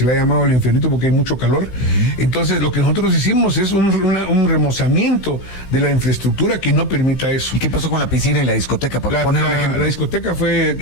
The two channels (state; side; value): late; right; 16 ms